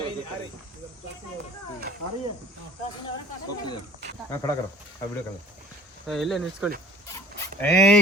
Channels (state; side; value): normal; both; correlation 0.49